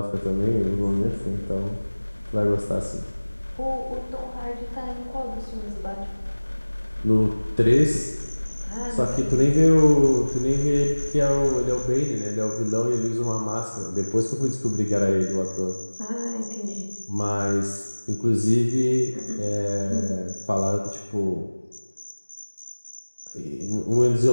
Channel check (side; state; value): both; inverted; correlation -1.00